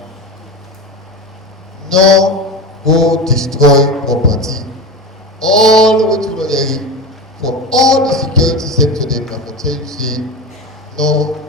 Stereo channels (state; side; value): normal; both; correlation 0.25